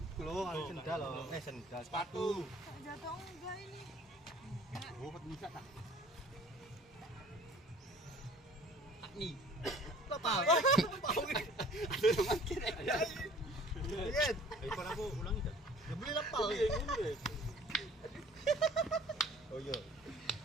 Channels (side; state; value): both; normal; correlation 0.50